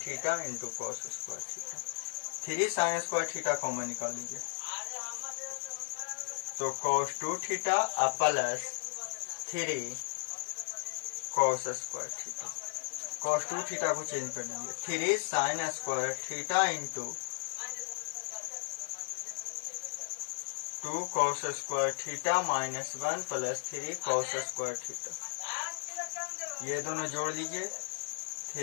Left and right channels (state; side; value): silent; right; 54 dB below the other